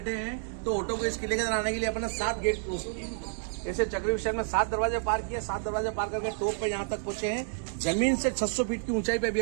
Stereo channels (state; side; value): silent; left; digital silence